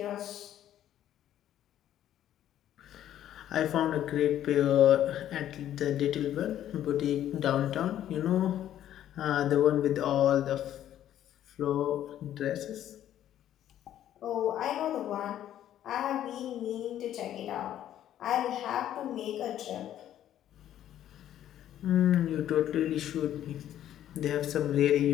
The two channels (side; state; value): right; quieter; 11.5 dB